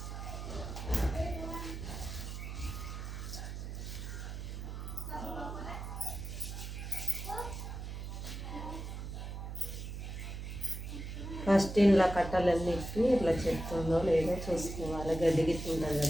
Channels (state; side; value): noise; right; hum, 7 dB below the sound